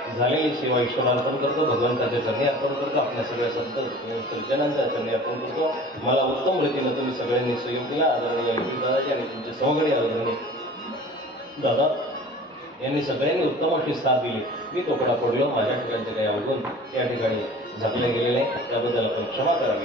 झालेली सेवा ईश्वराला अर्पण करतो, भगवंताच्या चरणी अर्पण करतो, आपल्या सगळ्या संत सज्जनांच्या चरणी अर्पण करतो. मला उत्तम रीतीनं तुम्ही सगळ्यांनी सहयोग दिला. आदरणीय दादाजी आणि तुमचे सहकारी आदरणीय दादा यांनी सगळ्यांनी उत्तम अशी साथ दिली. मी तोकडा पडलो, माझ्या ठिकाणचे काही अवगुण या ठिकाणी झाकले गेलेले, त्याबद्दल आपण क्षमा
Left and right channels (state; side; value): normal; both; correlation 0.43